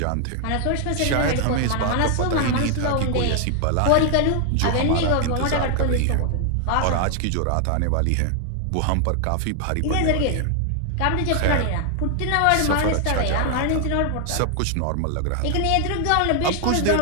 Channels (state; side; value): different; both; correlation 0.00